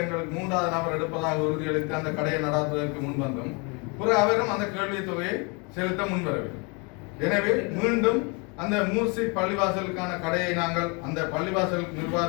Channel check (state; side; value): quieter; right; 31.6 dB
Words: எங்களுக்கு 3வது நபர் எடுப்பதாக உறுதியளித்து அந்த கடையை நடாத்துவதற்கு முன்வந்தோம். அவரும் அந்த கேள்வி தொகையை செலுத்த முன்வரவில்லை. எனவே மீண்டும் அந்த மூர்சி பள்ளிவாசலுக்கான கடையை நாங்கள் அந்த பள்ளிவாசல்